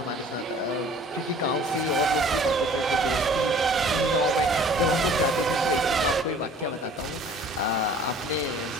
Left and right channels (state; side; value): normal; both; correlation 0.50